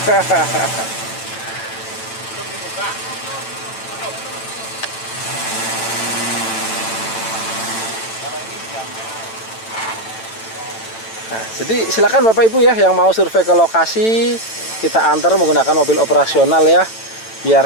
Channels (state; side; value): late; right; 9.0 ms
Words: Nah, jadi silakan Bapak Ibu ya yang mau survei ke lokasi, kita antar menggunakan mobil operasional ya,